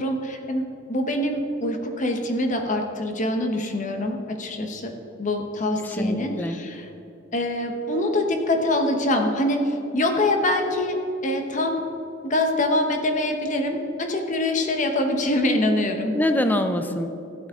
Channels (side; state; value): both; normal; correlation 0.34